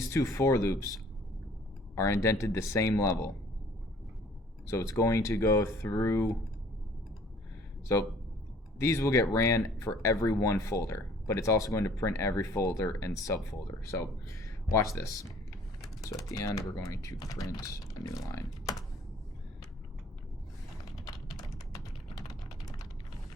two for loops are indented the same level. So it's going to go through, so these will get ran for every one folder, but it's also going to print every folder and subfolder. So watch this. So at the end, we're going to print a new line.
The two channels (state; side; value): normal; both; correlation 0.55